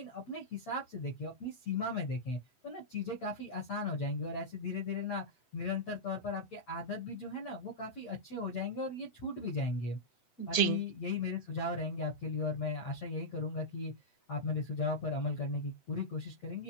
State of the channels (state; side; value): late; right; 7.9 ms